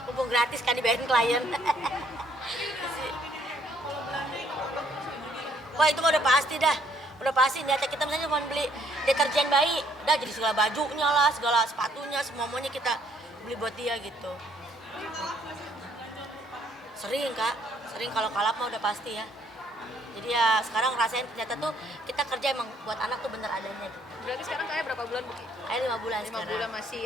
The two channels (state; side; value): normal; both; correlation 0.66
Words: mumpung gratis kan dibayarin klien. Wah itu mah udah pasti dah, udah pasti niatnya kita misalnya cuma beli deterjen bayi, dah jadi segala bajunya lah, segala sepatunya, semuanya kita beli buat dia gitu. Sering kak, sering kalau kalap mah udah pasti ya. Jadi ya sekarang rasain ternyata tuh kita kerja emang buat anak tuh bener adanya gitu. Berarti sekarang kayak berapa bulan Buki? Kayak 5 bulan 5 sekarang. bulan masih